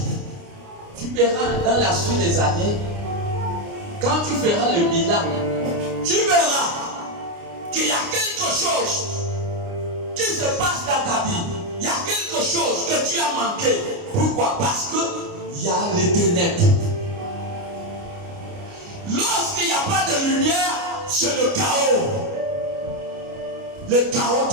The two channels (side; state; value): left; late; 29 ms